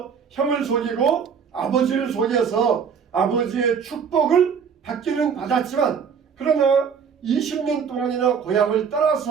형을 속이고 아버지를 속여서 아버지의 축복을 받기는 받았지만, 그러나 20년 동안이나 고향을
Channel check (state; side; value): quieter; left; 6.7 dB